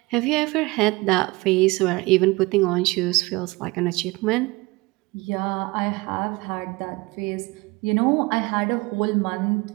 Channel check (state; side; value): quieter; left; 23.4 dB